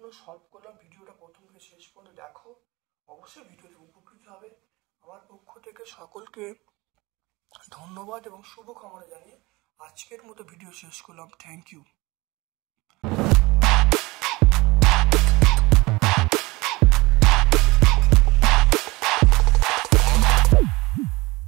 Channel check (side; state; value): left; quieter; 22.7 dB